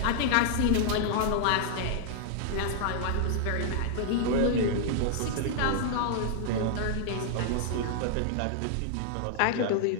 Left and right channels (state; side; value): different; both; correlation -0.01